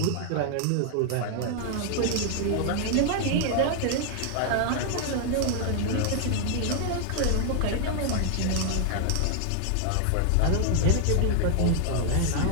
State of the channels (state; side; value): different; both; correlation 0.00